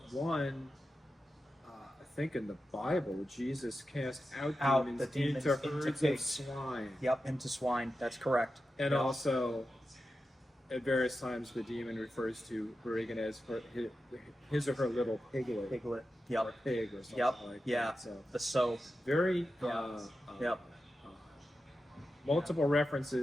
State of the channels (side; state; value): both; normal; correlation 0.91